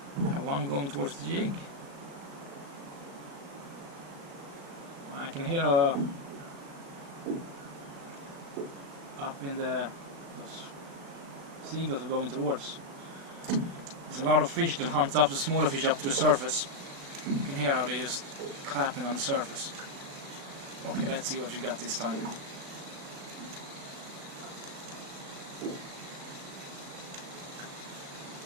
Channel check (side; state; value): left; late; 36 ms